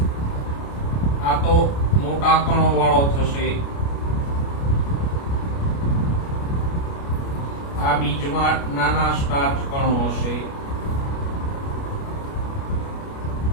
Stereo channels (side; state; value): right; late; 29 ms